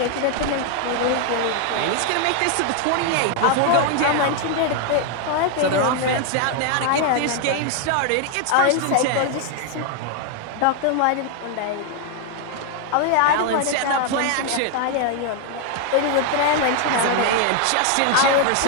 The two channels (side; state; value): both; different; correlation 0.00